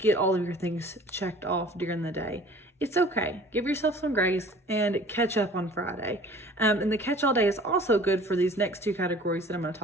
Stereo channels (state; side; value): normal; both; correlation 0.48